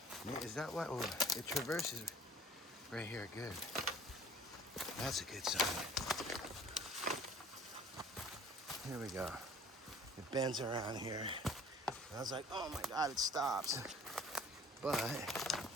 Is that what, oh, it traverses right here, good. That's a good sign. Here we go. It bends around here. I was like, oh my God, it stops. But it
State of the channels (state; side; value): normal; both; correlation 0.50